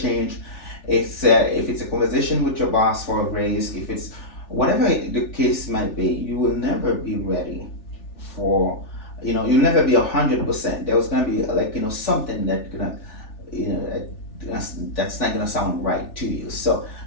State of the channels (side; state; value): right; late; 3.4 ms